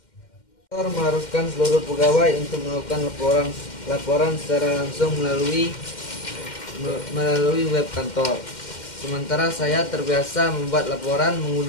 Mengharuskan seluruh pegawai untuk melakukan laporan secara langsung melalui web kantor. Sementara saya terbiasa membuat laporan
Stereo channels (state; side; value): late; right; 2.1 ms